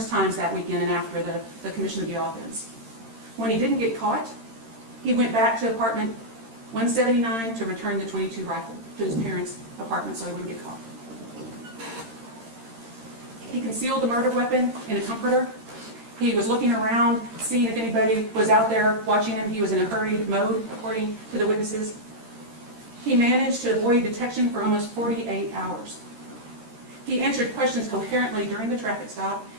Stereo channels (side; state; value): left; late; 13 ms